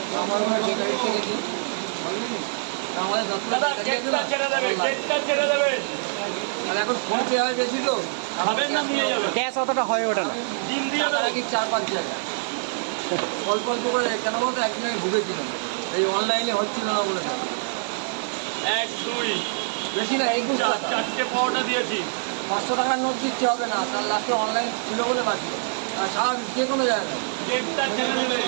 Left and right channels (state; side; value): silent; left; digital silence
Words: আমার মনে হয় বেকারি থেকে দিই। আমাদের দাদা গেটটা ছেড়ে দেবে, গেটটা ছেড়ে দেবে। আর এখন ফোন পে হয় বেশি তো, খাবেন না নিয়ে যাবে। ক্যাশ অতটা হয়ে ওঠে না। ডিম দিয়ে টাকা দেবে। রাখি 4-5 জায়গায়, অল্প অল্প করে। কেন বলতো একদিন আমি ভুগেছিলাম, এই অনলাইনে হচ্ছিল না বলে। 1 2 বেশি না, 21 টাকা। 4টে পাউডার দিয়েছি। 500 টাকার নোট দিচ্ছে হবে না, তার লাস্টে অনলাইন ছিল বলে বাঁচলো। আর সারা যে কোনো জায়গায় গেটটা ছেড়ে দেবে।